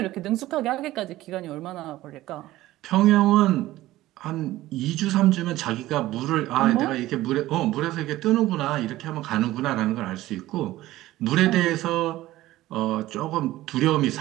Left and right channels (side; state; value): left; quieter; 16.2 dB